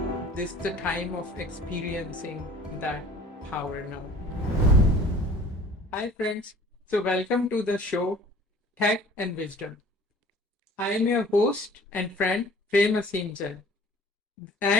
This is the time of experiencing that power now. Hi friends, so welcome to the show Tech and Wisdom. I am your host and friend Prem Aseem Jain.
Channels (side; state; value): both; normal; correlation 0.49